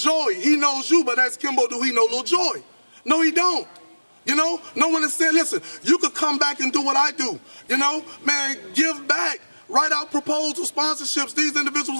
He knows you, but ask Kimbo, do he know Lil Joy? No, he don't. You know, no one is saying, listen, you could come back and do what I do. You know, man, give back, write out proposals, sponsorships. These individuals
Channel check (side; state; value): both; inverted; correlation -1.00